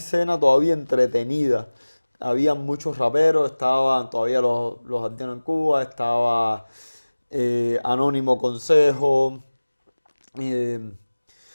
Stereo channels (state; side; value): inverted; both; correlation -1.00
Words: todavía entretenida. Había muchos raperos, estaban todavía los Arteanos en Cuba, estaba Anónimo Consejo, eh,